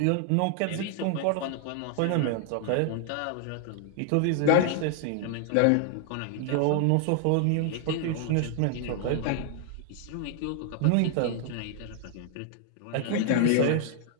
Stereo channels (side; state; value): both; different; correlation 0.00